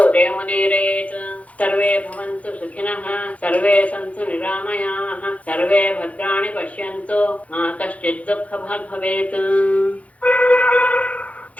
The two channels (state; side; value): late; right; 0.066 ms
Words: ಜಯಮುದೀರಯೇತ್. ಸರ್ವೇ ಭವಂತು ಸುಖಿನಃ ಸರ್ವೇ ಸಂತು ನಿರಾಮಯಾಃ ಸರ್ವೇ ಭದ್ರಾಣಿ ಪಶ್ಯಂತು ಮಾ ಕಶ್ಚಿತ್ ದುಃಖಭಾಗ್ ಭವೇತ್.